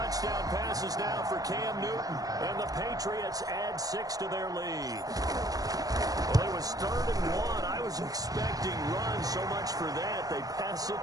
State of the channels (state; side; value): late; left; 0.18 ms